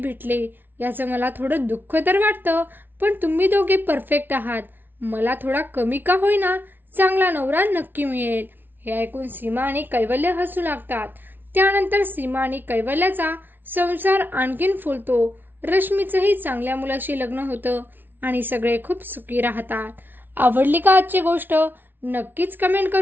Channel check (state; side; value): late; left; 0.095 ms